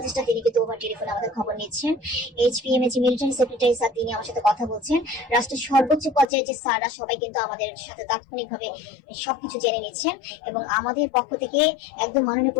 তিনি কিন্তু ওভার টেলিফোনে আমাদের খবর নিচ্ছেন। HPM এর যে মিলিটারি সেক্রেটারি স্যার, তিনি আমার সাথে কথা বলছেন। রাষ্ট্রের সর্বোচ্চ পর্যায়ে যে স্যাররা সবাই কিন্তু আমাদের সাথে তাৎক্ষণিকভাবে সবকিছু জেনে নিচ্ছেন। এবং আমাদের পক্ষ থেকে একদম মাননীয়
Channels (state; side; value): drops out; right; at 6.2 s